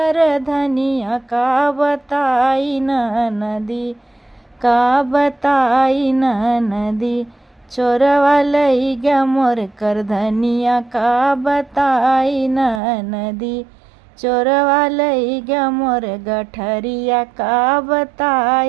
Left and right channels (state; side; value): drops out; left; at 12.8 s